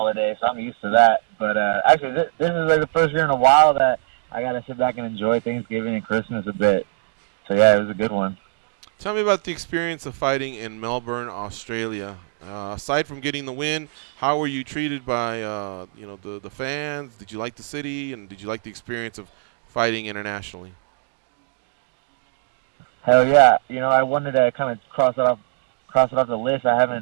so I'm used to that. But actually, this is like the first year in a while that I got to sit back and enjoy Thanksgiving and Christmas a bit. So yeah, it was a good one. Tell me about the experience of fighting in Melbourne, Australia. Aside from getting the win, how were you treated by the fans? Did you like the city, and did you like the experience of fighting internationally? Hell yeah! I wanted to kind of cross it off the list.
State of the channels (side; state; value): left; silent; digital silence